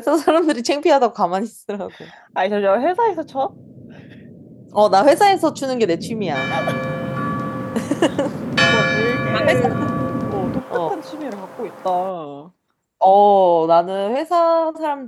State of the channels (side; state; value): both; identical; correlation 1.00